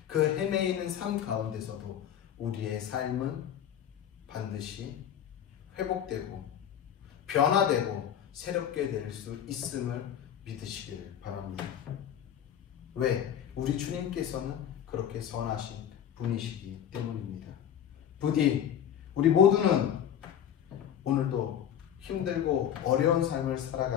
그 헤매이는 삶 가운데서도 우리의 삶은 반드시 회복되고 변화되고 새롭게 될 수 있음을 믿으시기를 바랍니다. 왜? 우리 주님께서는 그렇게 선하신 분이시기 때문입니다. 부디 우리 모두는 오늘도 힘들고 어려운 삶을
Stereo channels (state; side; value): quieter; right; 9.6 dB